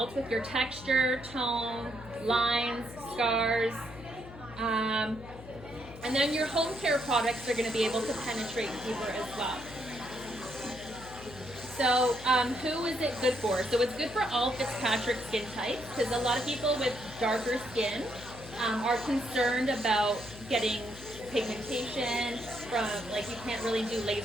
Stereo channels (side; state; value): left; noise; hum, 16 dB below the sound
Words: with your texture, tone, lines, scars. And then your home care products are going to be able to penetrate deeper as well. So who is it good for? So it's good for all Fitzpatrick skin types, because a lot of people with darker skin are concerned about getting pigmentation from, like, you can't really do